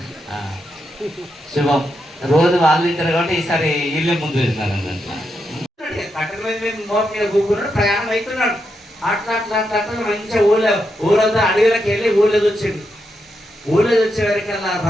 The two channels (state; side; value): normal; both; correlation 0.83